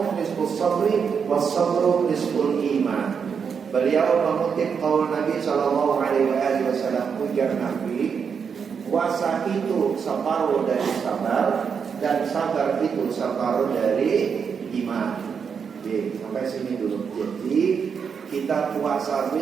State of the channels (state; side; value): quieter; left; 6.5 dB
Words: nisfus sabri was-sabru nisful iman. Beliau mengutip qaul Nabi sallallahu alaihi wasallam, ujar Nabi, puasa itu separuh dari sabar dan sabar itu separuh dari iman. Oke, sampai sini dulu. Jadi kita puasa